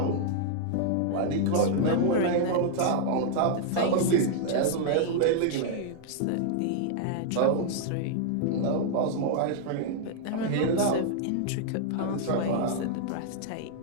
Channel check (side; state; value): both; different; correlation -0.01